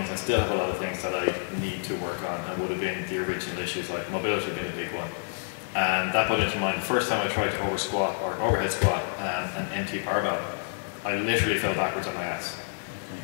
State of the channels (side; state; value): right; silent; digital silence